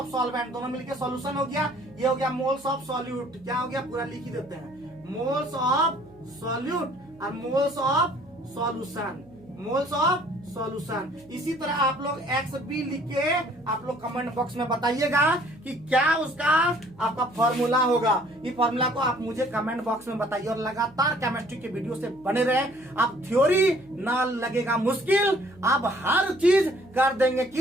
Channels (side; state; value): right; noise; hum, 26 dB below the sound